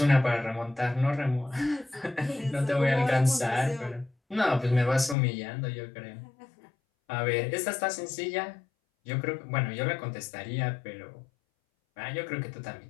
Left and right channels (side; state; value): right; drops out; at 5.2 s